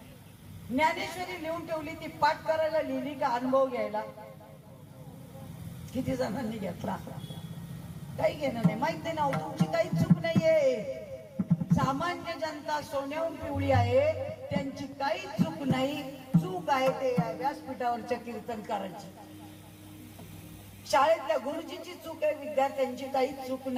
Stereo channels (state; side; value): identical; both; correlation 1.00